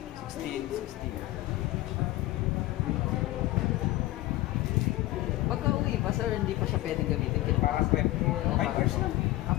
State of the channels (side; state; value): right; quieter; 17.6 dB